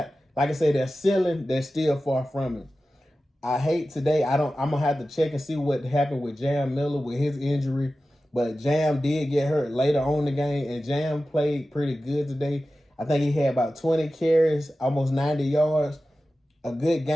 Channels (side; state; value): both; normal; correlation 0.94